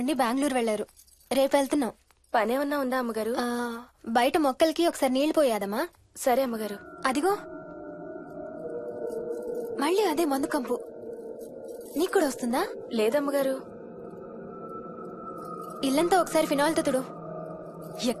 బెంగళూరు వెళ్లారు. రేపు వెళ్తున్నాం. పనేమన్నా ఉందా అమ్మగారు? బయట మొక్కలకి ఒకసారి నీళ్లు పోయాదమ్మా. సరే అమ్మగారు. అదిగో మళ్ళీ అదే మందు కంపు. నీకు కూడా వస్తుందా? లేదమ్మగారు. ఇల్లంతా ఒకసారి ఫినాయిల్ తో తుడు.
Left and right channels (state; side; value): identical; both; correlation 1.00